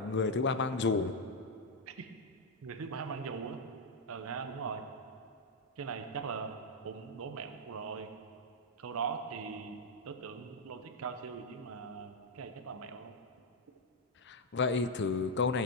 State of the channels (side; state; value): both; normal; correlation 0.01